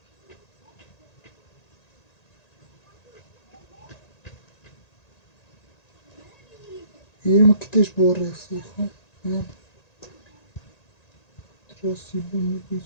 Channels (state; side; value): late; right; 1.9 ms